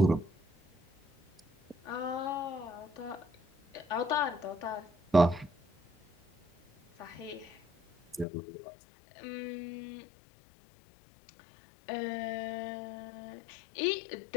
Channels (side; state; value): right; drops out; at 8.2 s